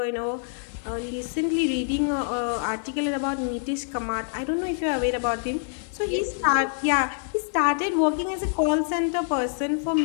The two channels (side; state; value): right; silent; digital silence